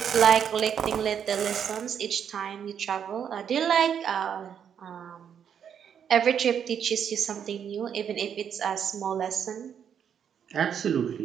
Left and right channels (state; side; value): quieter; left; 8.2 dB